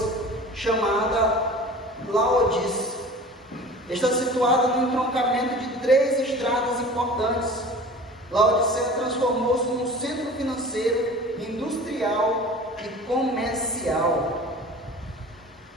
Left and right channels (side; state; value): both; normal; correlation 0.40